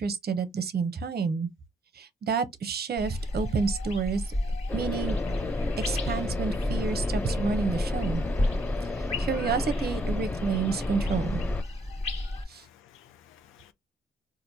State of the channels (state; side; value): normal; both; correlation 0.71